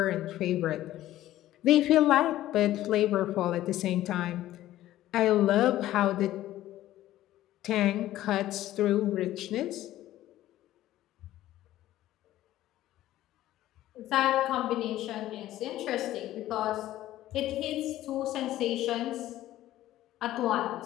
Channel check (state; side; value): quieter; right; 14.3 dB